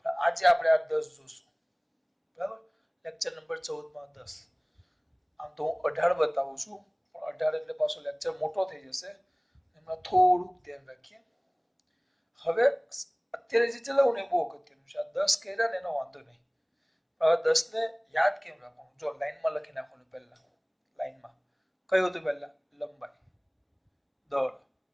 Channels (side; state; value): both; identical; correlation 1.00